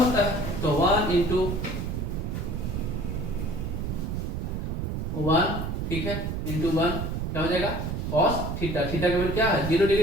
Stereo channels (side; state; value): right; noise; rumble, 3 dB below the sound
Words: होता है। तो 1 इंटू 1, ठीक है, इंटू 1 क्या हो जाएगा? Cos theta. थीटा का वैल्यू क्या है? 0